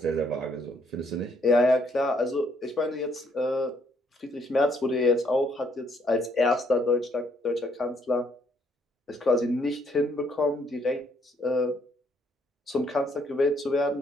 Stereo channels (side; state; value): both; normal; correlation 0.69